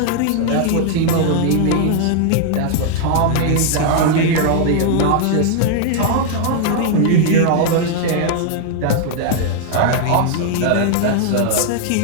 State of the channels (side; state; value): both; different; correlation 0.00